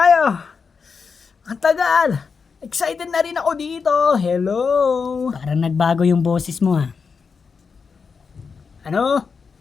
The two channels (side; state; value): right; quieter; 5.4 dB